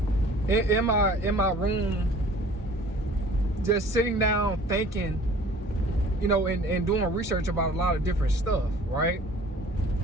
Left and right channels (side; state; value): both; normal; correlation 0.49